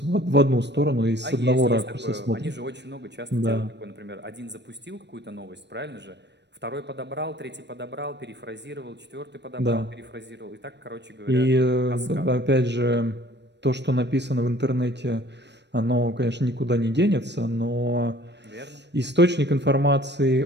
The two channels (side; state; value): left; late; 0.50 ms